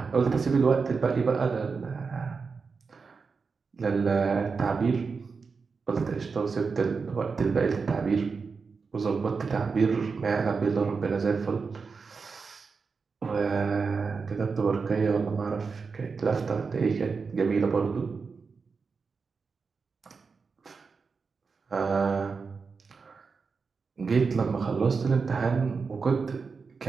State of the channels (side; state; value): left; quieter; 5.0 dB